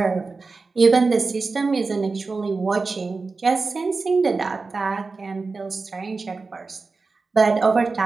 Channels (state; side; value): quieter; left; 4.1 dB